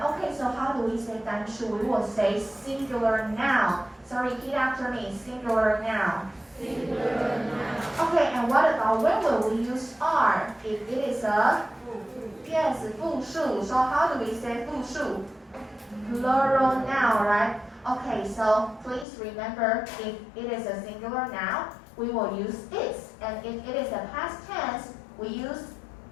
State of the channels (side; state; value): right; drops out; at 19.1 s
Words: Okay, so how do we say 单数? We will say singular noun. So repeat after me, singular noun. Singular noun. Okay, and what about when will we use are? If it is a, yes, 复数. So how do we say 复数? Plural noun, right? Okay, so please remember if it is a singular noun, we will use is. And if it is a past tense, we use